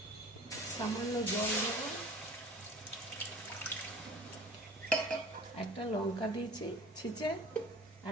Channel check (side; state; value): both; normal; correlation 0.43